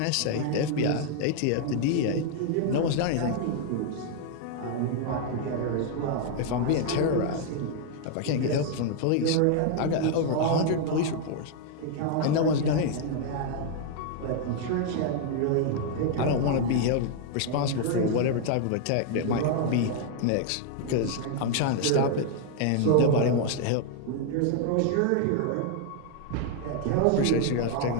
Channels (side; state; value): both; different; correlation 0.00